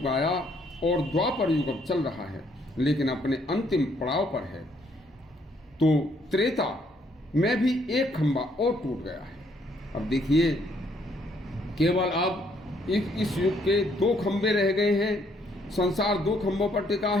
आया और द्वापर युग अब चल रहा है, लेकिन अपने अंतिम पड़ाव पर है। तो त्रेता में भी एक खंभा और टूट गया है। अब देखिए केवल अब इस युग के 2 खंभे रह गए हैं। संसार 2 खंभों पर टिका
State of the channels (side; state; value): both; normal; correlation 0.68